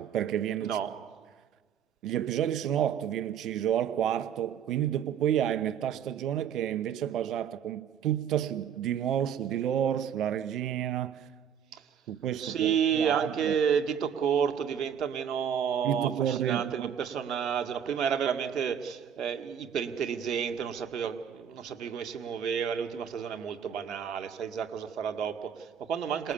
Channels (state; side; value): quieter; left; 8.5 dB